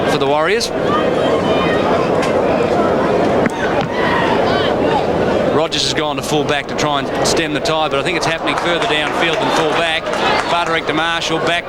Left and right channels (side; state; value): both; identical; correlation 1.00